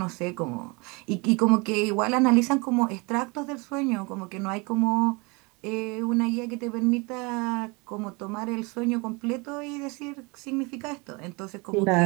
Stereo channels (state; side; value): quieter; left; 28.1 dB